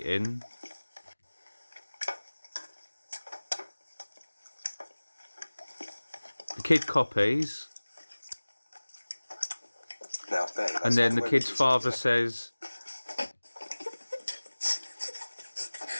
The kid copies. Now, Ben, that's And then not the way kid's we eat father at the says,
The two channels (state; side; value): inverted; both; correlation -1.00